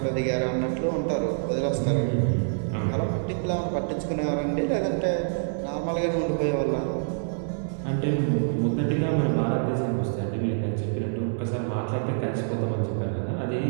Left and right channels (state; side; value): silent; left; digital silence